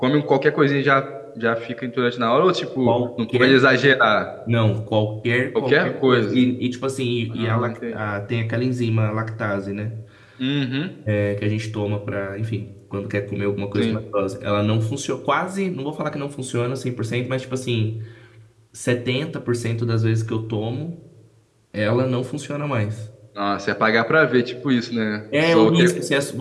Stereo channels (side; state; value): both; identical; correlation 1.00